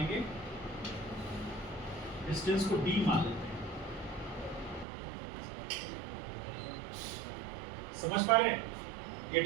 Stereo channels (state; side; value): drops out; left; at 4.9 s